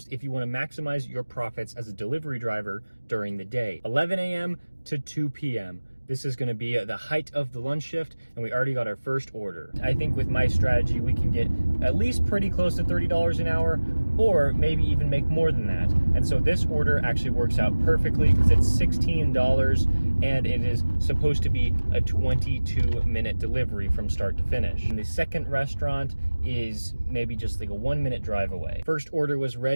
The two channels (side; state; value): both; inverted; correlation -1.00